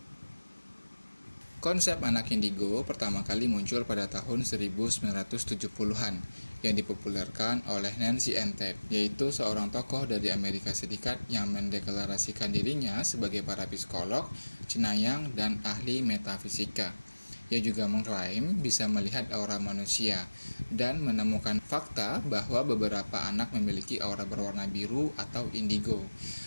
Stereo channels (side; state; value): both; inverted; correlation -1.00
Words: Konsep anak indigo pertama kali muncul pada tahun 1970-an yang dipopulerkan oleh Nancy Entep, yaitu seorang tokoh dari Amerika Serikat yang mendeklarasikan dirinya sebagai para psikolog, cenayang, dan ahli metafisika. Ia juga mengklaim bisa melihat aura manusia dan menemukan fakta bahwa beberapa anak memiliki aura berwarna biru atau indigo.